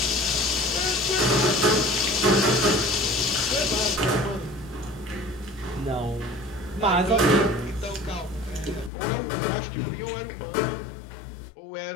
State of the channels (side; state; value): right; drops out; at 8.9 s